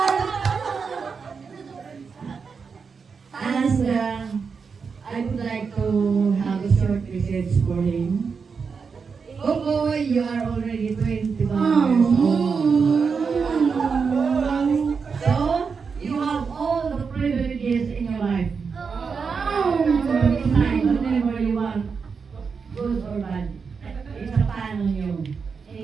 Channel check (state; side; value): quieter; left; 5.5 dB